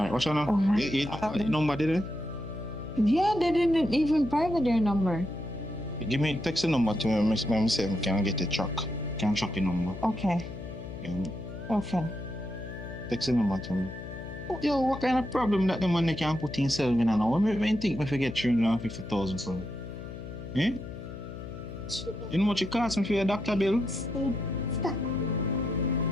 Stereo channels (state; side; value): noise; left; hum, 10 dB below the sound